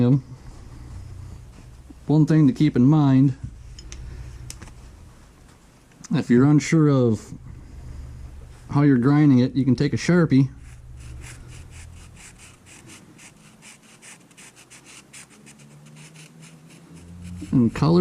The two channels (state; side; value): identical; both; correlation 1.00